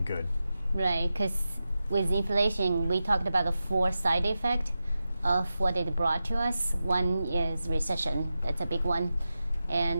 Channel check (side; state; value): both; inverted; correlation -0.91